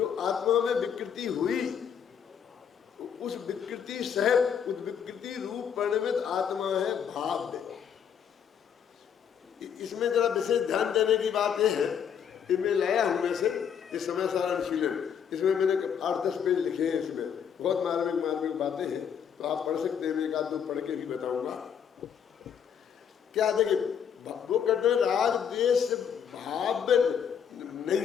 आत्मा में विकृति हुई, उस विकृति सहित उस विकृति रूप परिणमित आत्मा है भाव्य। इसमें जरा विशेष ध्यान देने की बात यह है कि मैं लाया हूं में से इस समय सारा अनुशीलन, इसमें मैंने 8-10 पेज लिखे हैं, इसमें बहुत मार्मिक बातें हैं, तो आप पढ़ सकते हैं, एक आध दो पढ़ के भी बताऊंगा। क्या देखिए, वो कहते हैं राग द्वेष भाव नहीं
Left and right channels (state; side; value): quieter; right; 7.8 dB